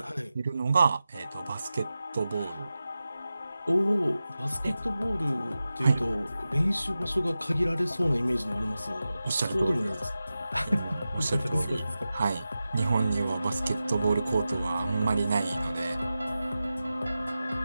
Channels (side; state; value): both; inverted; correlation -0.93